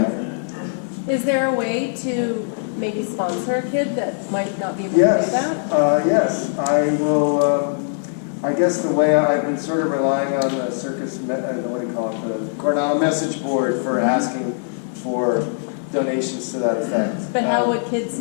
Is there a way to maybe sponsor a kid that might not be able to do Yes, that? yes, I will, I guess the way I've been sort of relying on the circus, what do you call it, the Coronado message board for asking for donations to that effect. But how would kids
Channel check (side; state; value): right; silent; 63 dB below the other